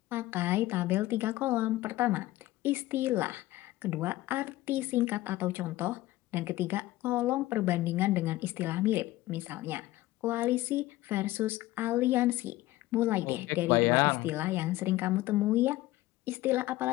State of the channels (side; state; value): right; quieter; 17.0 dB